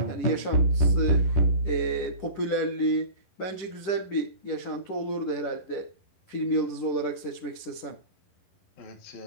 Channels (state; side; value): late; right; 10 ms